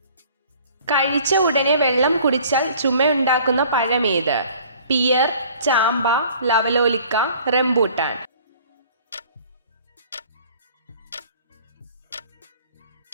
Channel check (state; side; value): inverted; both; correlation -0.51